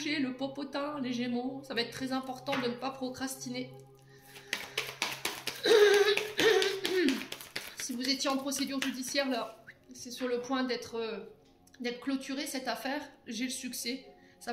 le popotin, les Gémeaux. Ça va être très important de ne pas procrastiner. Si vous étiez en procédure judiciaire, là, c'est sur le point d'être clôturé cette affaire, j'ai le succès. Ça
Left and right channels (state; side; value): identical; both; correlation 1.00